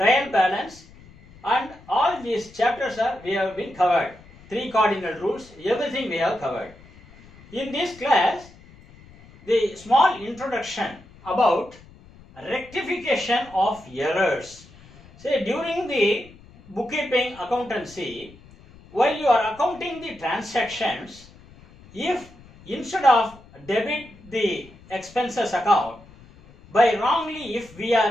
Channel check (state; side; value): noise; left; rumble, 23 dB below the sound